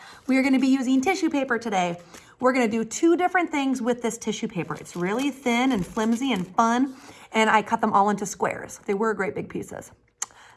We are going to be using tissue paper today. We're going to do two different things with this tissue paper. It's really thin and flimsy and fun, and I cut them all into squares. They were great big pieces.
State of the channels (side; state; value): both; identical; correlation 1.00